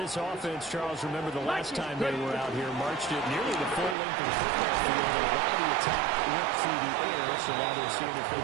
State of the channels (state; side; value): drops out; left; at 4.0 s